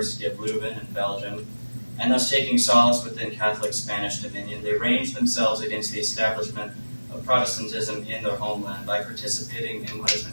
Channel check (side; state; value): both; inverted; correlation -1.00